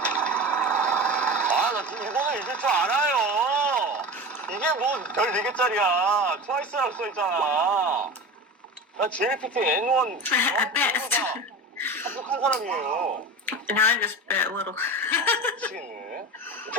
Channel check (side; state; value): both; normal; correlation 0.30